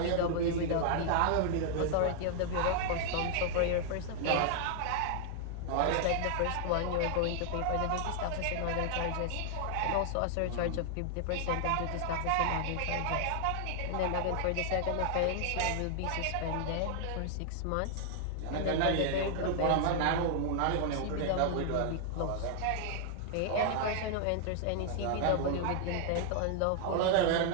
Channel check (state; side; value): different; both; correlation -0.01